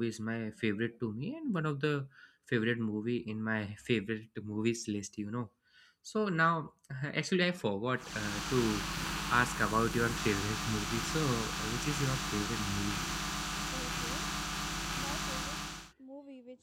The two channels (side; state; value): both; identical; correlation 1.00